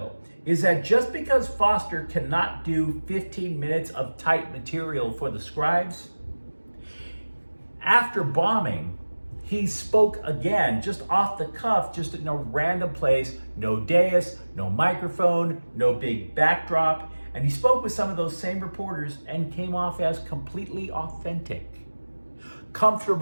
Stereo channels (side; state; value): both; inverted; correlation -1.00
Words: is that just because Foster cannot do 15 minutes of tight material for the scribes, after bombing, he spoke again, just off the cuff, just in a random place, no dais, no microphone, no big backdrop, and he spoke with some of those same reporters and came off as completely authentic,